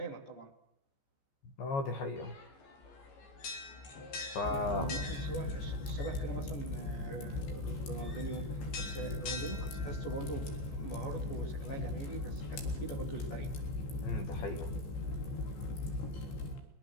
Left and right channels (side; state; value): right; late; 15 ms